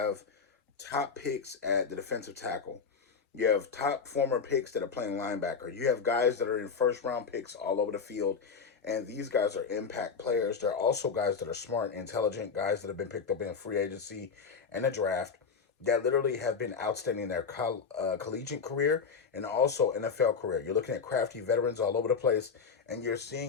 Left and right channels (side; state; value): right; quieter; 5.7 dB